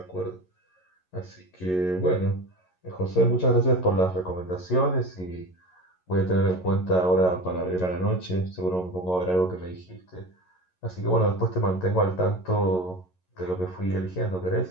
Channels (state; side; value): late; right; 11 ms